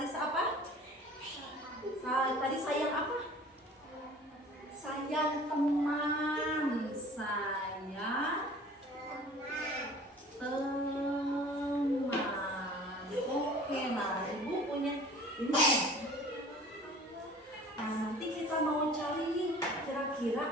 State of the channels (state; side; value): normal; both; correlation 0.46